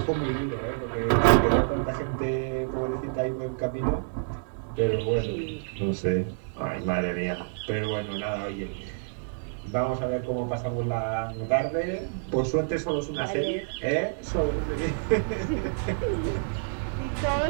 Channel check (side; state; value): left; silent; digital silence